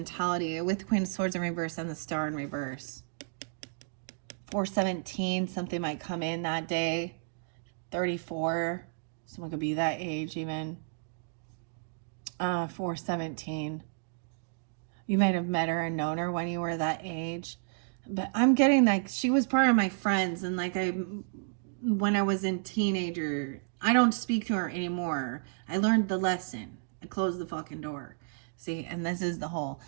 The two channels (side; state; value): left; silent; digital silence